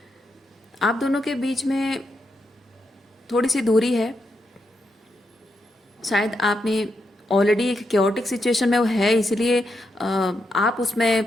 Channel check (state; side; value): normal; both; correlation 0.83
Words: आप दोनों के बीच में थोड़ी सी दूरी है, शायद आपने ऑलरेडी एक क्योटिक सिचुएशन में वो है, इसलिए आप